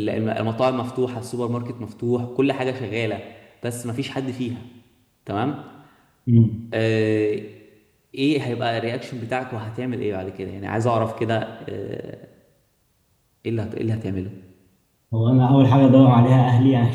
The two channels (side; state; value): both; identical; correlation 1.00